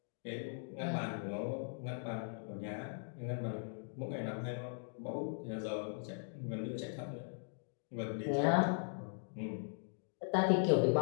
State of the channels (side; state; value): right; silent; digital silence